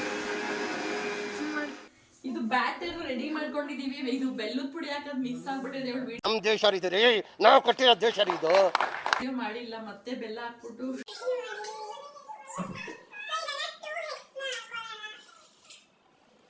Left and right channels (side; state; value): both; identical; correlation 1.00